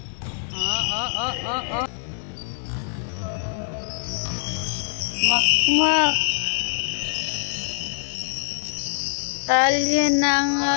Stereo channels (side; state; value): right; silent; 58 dB below the other